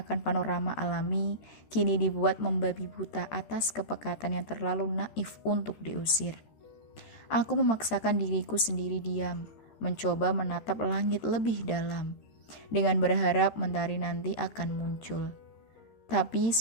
panorama alami kini dibuat membabi buta atas kepekatan yang terlalu naif untuk diusir. Aku memaksakan diriku sendiri diam, mencoba menatap langit lebih dalam, dengan berharap mentari nanti akan muncul. Tapi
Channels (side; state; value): right; late; 13 ms